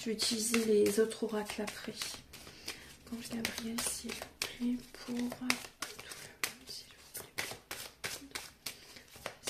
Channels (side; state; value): both; identical; correlation 1.00